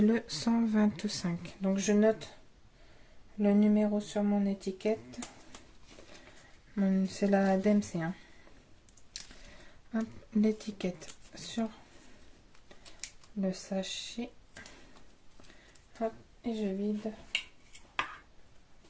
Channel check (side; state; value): both; identical; correlation 1.00